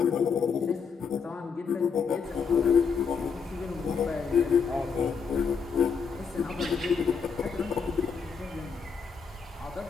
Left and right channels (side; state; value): right; quieter; 5.9 dB